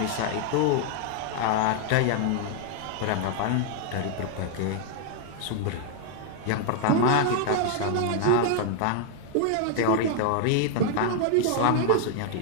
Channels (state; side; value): different; both; correlation 0.00